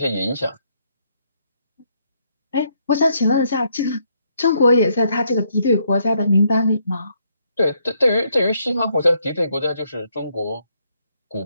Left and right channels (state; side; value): inverted; both; correlation -0.73